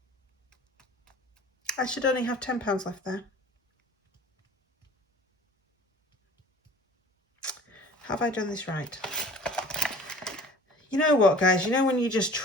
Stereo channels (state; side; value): normal; both; correlation 0.45